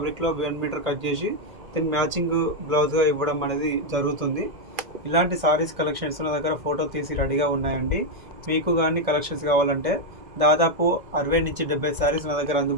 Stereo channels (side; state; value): left; late; 1.6 ms